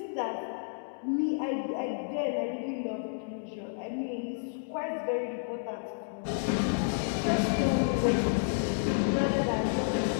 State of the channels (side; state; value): right; silent; digital silence